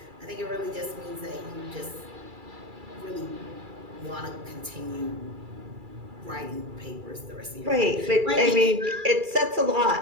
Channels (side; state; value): left; late; 2.3 ms